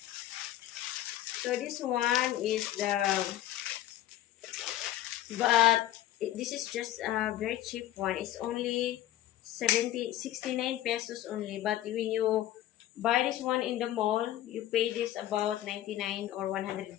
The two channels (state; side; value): quieter; right; 13.7 dB